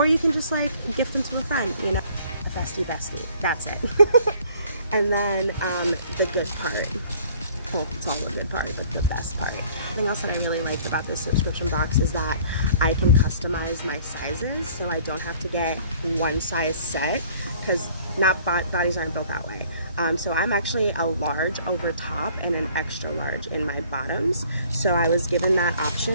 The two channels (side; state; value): both; inverted; correlation -0.56